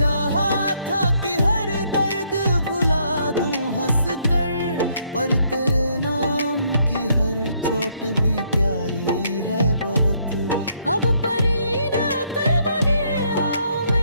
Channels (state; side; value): inverted; both; correlation -0.70